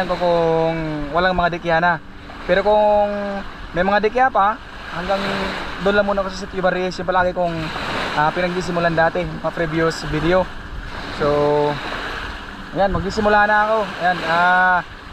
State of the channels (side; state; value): both; identical; correlation 1.00